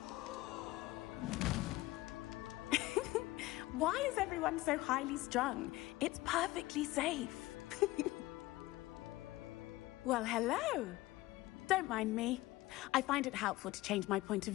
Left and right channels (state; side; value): quieter; right; 18.5 dB